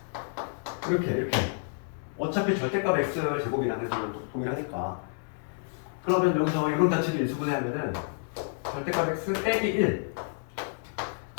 이렇게 어차피 절대값 x의 제곱이라는 걸 동일하니까. 그러면 여기서 이런 자체를 인수분해하면은 절대값 x 빼기 1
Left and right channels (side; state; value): right; silent; 58 dB below the other